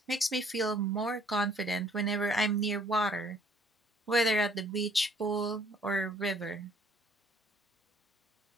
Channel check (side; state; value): both; normal; correlation 0.60